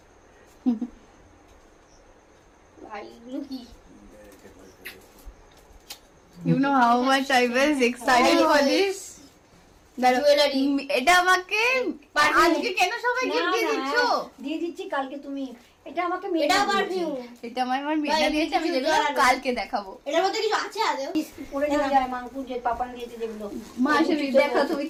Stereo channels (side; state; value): both; identical; correlation 1.00